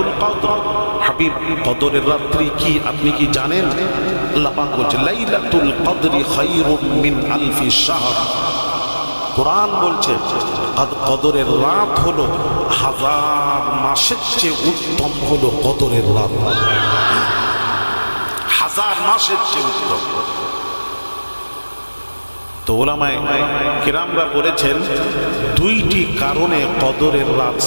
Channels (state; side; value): inverted; both; correlation -1.00